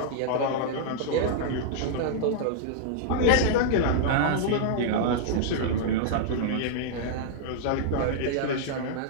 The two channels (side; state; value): both; different; correlation -0.01